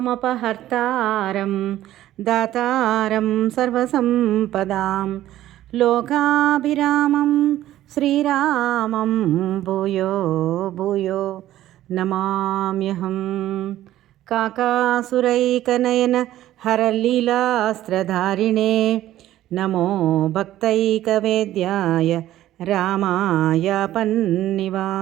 దాతారం సర్వసంపదాం లోకాభిరామం శ్రీరామం భూయో భూయో నమామ్యహం. కాకాసురైకనయన హరలీలాస్త్రధారిణే నమో భక్తైకవేద్యాయ రామాయ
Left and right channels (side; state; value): left; quieter; 13.7 dB